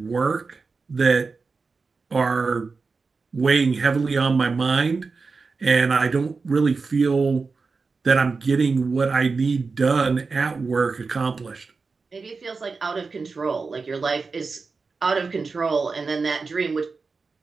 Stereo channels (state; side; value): quieter; left; 4.4 dB